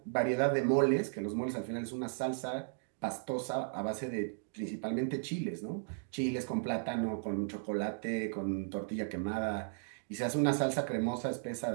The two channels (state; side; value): silent; left; digital silence